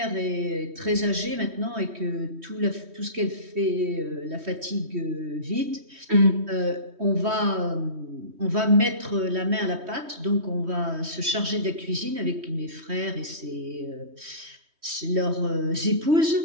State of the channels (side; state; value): left; late; 3.1 ms